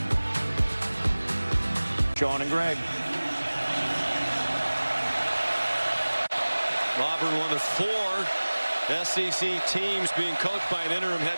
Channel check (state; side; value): inverted; both; correlation -1.00